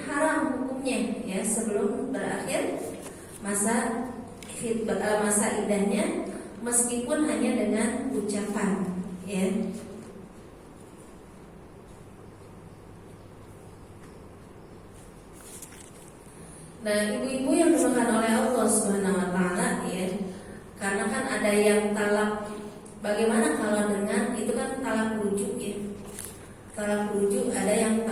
haram hukumnya, ya, sebelum berakhir masa khitbah, masa idahnya, meskipun hanya dengan ucapan, ya. Nah, ibu-ibu yang dimakan oleh Allah Subhanahu Wa Taala, ya, karena kan ada yang talak. Bagaimana kalau dengan itu kan talak rujuk, ya. Talak rujuk, ada yang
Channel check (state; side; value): identical; both; correlation 1.00